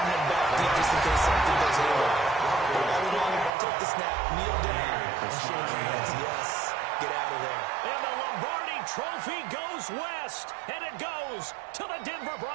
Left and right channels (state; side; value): drops out; left; at 3.5 s